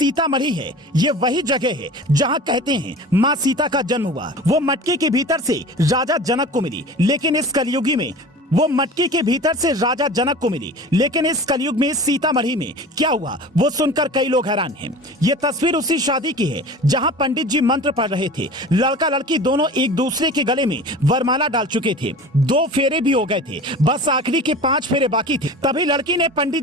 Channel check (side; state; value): both; normal; correlation 0.37